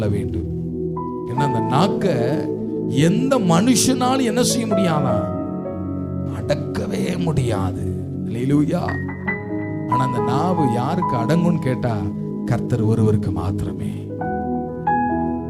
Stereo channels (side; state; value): both; identical; correlation 1.00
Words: வேண்டும். ஏன்னா அந்த நாக்க எந்த மனுஷனாலும் என்ன செய்ய முடியாதா, அடக்கவே முடியாது. அல்லேலூயா. ஆனா அந்த நாவு யாருக்கு அடங்கும்னு கேட்டா, கர்த்தர் ஒருவருக்கு மாத்திரமே.